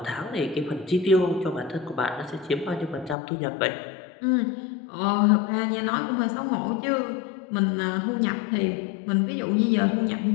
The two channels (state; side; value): drops out; right; at 3.2 s